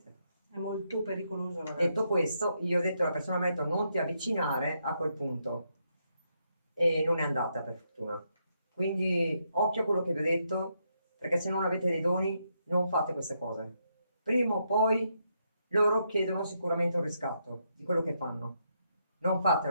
È molto pericoloso, ragazzi. Detto questo, io ho detto alla persona, mi ha detto non ti avvicinare a quel punto e non è andata per fortuna. Quindi occhio a quello che vi ho detto, perché se non avete dei doni non fate queste cose. Prima o poi loro chiedono sicuramente un riscatto di quello che fanno. Non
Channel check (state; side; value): inverted; both; correlation -0.78